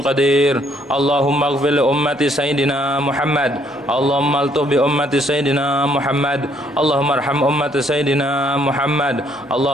قدير اللهم اغفر لأمة سيدنا محمد اللهم الطف بأمة سيدنا محمد اللهم ارحم أمة سيدنا محمد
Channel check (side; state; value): both; normal; correlation 0.67